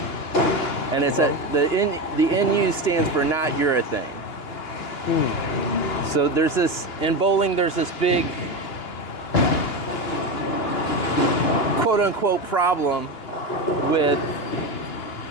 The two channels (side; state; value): right; late; 2.9 ms